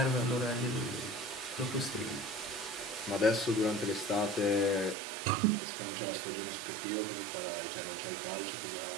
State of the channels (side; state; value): left; drops out; at 5.0 s